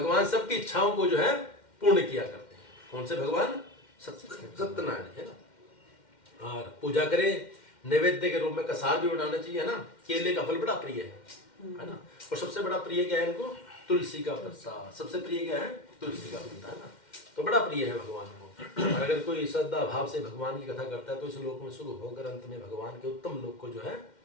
सबकी इच्छाओं को जो है पूर्ण किया करते हैं। कौन से भगवान? सत्यनारायण, है ना। और पूजा करें, नैवेद्य के रूप में कसार भी बनाना चाहिए, है ना। केले का फल बड़ा प्रिय है ना। और सबसे बड़ा प्रिय क्या है इनको? तुलसी का प्रसाद। सबसे प्रिय क्या है? तुलसी का पत्ता, है ना। तो बड़ा प्रिय है भगवान को। और अगर कोई श्रद्धा भाव से भगवान की कथा करता है तो इस लोक में सुख होकर अंत में भगवान के उत्तम लोक को जो है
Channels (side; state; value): right; late; 2.1 ms